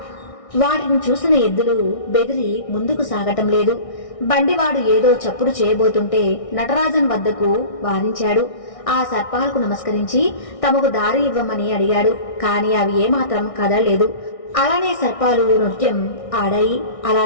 వాటిని చూసిన ఎద్దులు బెదిరి ముందుకు సాగటం లేదు. బండివాడు ఏదో చప్పుడు చేయబోతుంటే నటరాజన్ వద్దకు వారించాడు. ఆ సర్పాలకు నమస్కరించి తమకు దారి ఇవ్వమని అడిగాడు. కాని అవి ఏమాత్రం కదలలేదు. అలానే సర్పాలు నృత్యం ఆడాయి. అలా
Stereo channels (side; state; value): right; late; 1.6 ms